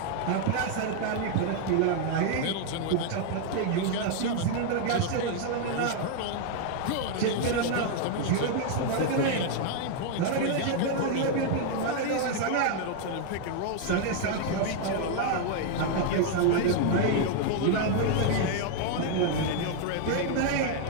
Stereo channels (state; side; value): different; both; correlation 0.00